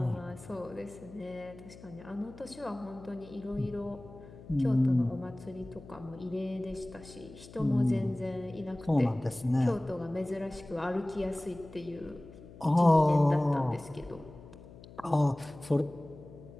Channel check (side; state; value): left; noise; hum, 18 dB below the sound